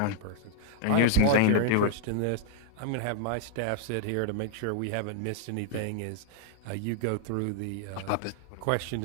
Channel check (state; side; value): different; both; correlation 0.00